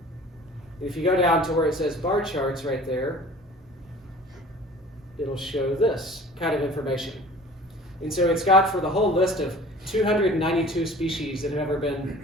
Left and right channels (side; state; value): both; normal; correlation 0.46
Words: If you go down to where it says bar charts right there, it'll show this kind of information. And so it's got for the whole list of 292 species that have ever been